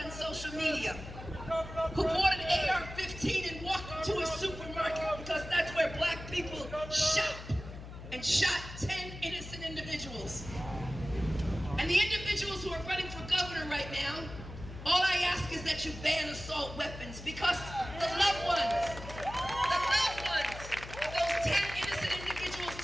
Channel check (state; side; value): noise; left; hum, 12 dB below the sound